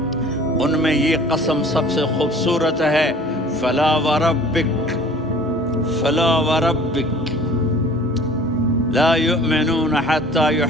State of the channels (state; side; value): normal; both; correlation 0.48